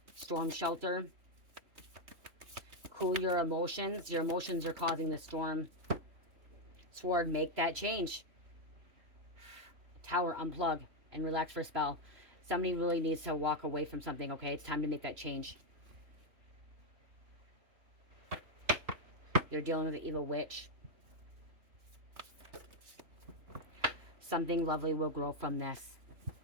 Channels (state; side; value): late; left; 3.0 ms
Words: Storm shelter. Cool your emotions. Your emotions are causing the storm. Sword, make that change. Tower, unplug and relax for a spell. Somebody really needs to walk away from something, okay? It's time to make that change. You're dealing with an evil witch. Something lovely will grow from this.